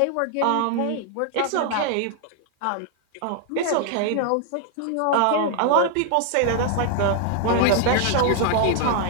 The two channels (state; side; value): different; both; correlation 0.00